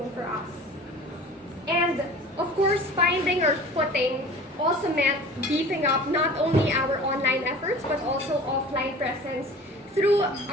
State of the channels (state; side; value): normal; both; correlation 0.41